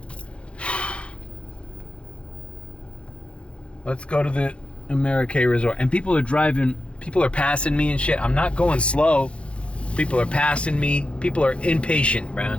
Let's go to the Amerique Resort. And people are passing me and shit. I'm not going slow. People are passing me. People are impatient,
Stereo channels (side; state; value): right; late; 0.059 ms